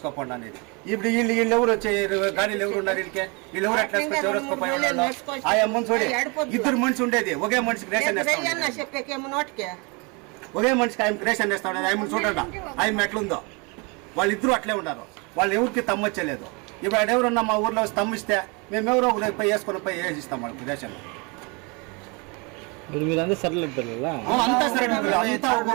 అనేది. ఇప్పుడు వీళ్ళు ఎవరు వచ్చే గాడీలు ఎవరు ఉన్నారు వీళ్ళు ఎవరు ఎట్లా ఎవరు వేసుకోపోయి ఆయా మనిషి చూడే ఇద్దరు మనిషి ఉండేది ఒకే మనిషికి రేషన్ వేస్తా ఒకే మనిషికి ఆయన రేషన్ వేస్తా ఉండేది. ఆయన చూడండి ఆయన ఎట్లుందో వాళ్ళిద్దరూ అట్లే ఉన్నారు. వాళ్ళు ఎవరికి తమ్మొచ్చలేదు. ఇప్పుడు ఎవరున్నా మా ఊర్లో వచ్చి తమ్మిస్తే మేము ఎవరో పోయి వేసుకొని పోయి వేసిస్తాం వాళ్ళకి రేషన్. మీరంతా సరళ పిల్లల అంతా సరే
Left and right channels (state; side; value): quieter; left; 30.1 dB